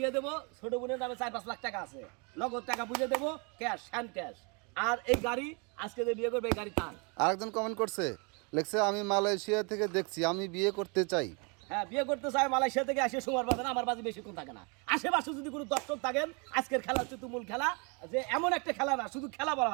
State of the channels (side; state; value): left; quieter; 33.1 dB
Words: দেবো। ছোট বোনের নামে 4-5 লাখ টাকা আছে, নগদ টাকা বুঝে দেবো, ক্যাশ, হ্যান্ড ক্যাশ। আর এই গাড়ি আজকে যে বিয়ে করবে এই গাড়ি তার। আরেকজন কমেন্ট করছে লিখছে আমি মালয়েশিয়া থেকে দেখছি, আমি বিয়ে করতে চাই। হ্যাঁ, বিয়ে করতে চাই, মালয়েশিয়া থেকে আসে সময় পাবে না, আমার বাজি বেশিক্ষণ থাকে না। আশেপাশে যদি কোনো দর্শক থাকেন, আজকের খেলা হচ্ছে তুমুল খেলা, যে এমন একটা খেলা না, শুধু খেলা বলা